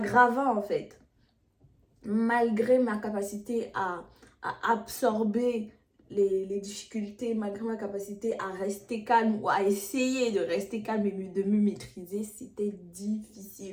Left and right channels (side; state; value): both; identical; correlation 1.00